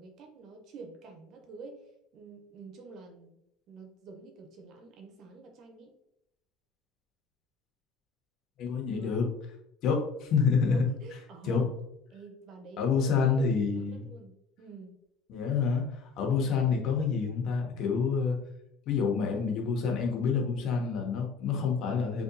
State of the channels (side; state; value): right; quieter; 5.1 dB